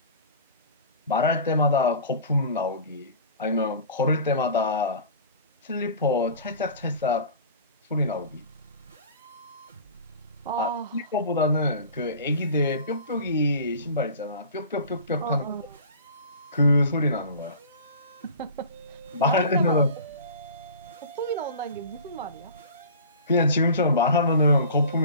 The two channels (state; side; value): inverted; both; correlation -0.39